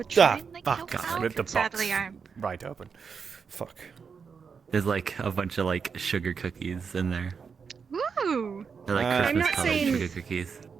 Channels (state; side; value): quieter; left; 5.9 dB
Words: try and like help God, out. rip the box Sadly, I'm. right open. Fuck. There's like a bunch of like sugar cookies in there. Woo! They're like I'm Christmas not colored saying- sugar cookies.